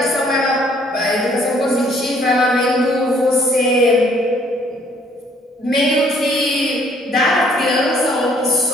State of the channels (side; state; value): both; normal; correlation 0.62